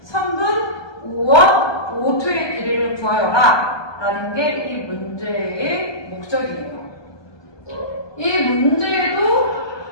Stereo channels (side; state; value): right; late; 1.2 ms